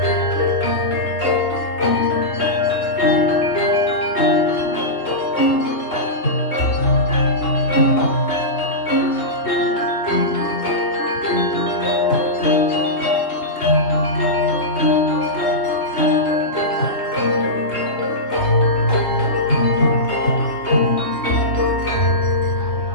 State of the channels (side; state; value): right; late; 3.0 ms